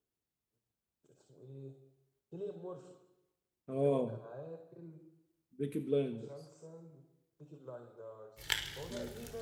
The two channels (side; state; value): both; identical; correlation 1.00